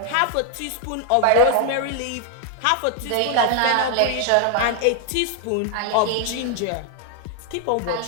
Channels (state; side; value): different; both; correlation 0.00